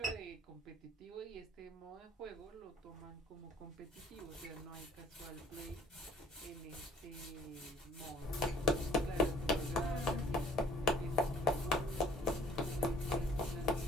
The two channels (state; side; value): normal; both; correlation 0.58